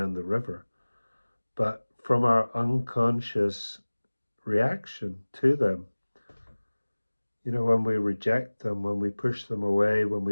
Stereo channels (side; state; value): both; inverted; correlation -1.00